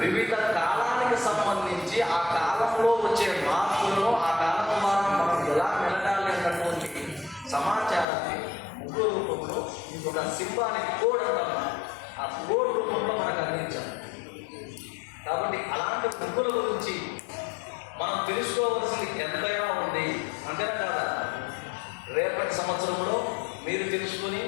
కాలానికి సంబంధించి ఆ కాలంలో వచ్చే మార్పులను, ఆ కాలం ద్వారా మనం ఎలా మెలగాలి అన్నటువంటి సమాచారాన్ని ముగ్గు రూపంలో ఒక సింబాలిక్ కోడ్ అంటాం, ఆ కోడ్ రూపంలో మనకు అందించాలి. కాబట్టి అలాంటి ముగ్గుల గురించి మనం తెలుసుకోవాల్సింది ఎంతైనా ఉంది. అంతేనా కాదా? రేపటి సంవత్సరంలో మీరు తెలుసుకుని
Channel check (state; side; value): drops out; right; at 8.1 s